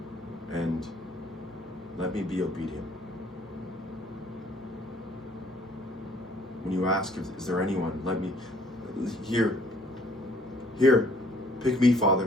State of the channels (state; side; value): normal; both; correlation 0.60